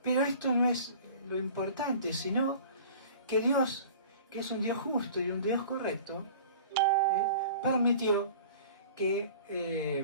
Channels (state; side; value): inverted; both; correlation -0.43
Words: esto no es lo importante, sino que Dios, que es un Dios justo y un Dios correcto, permitió que